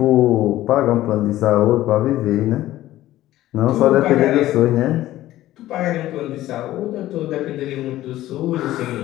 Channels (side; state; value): right; quieter; 14.9 dB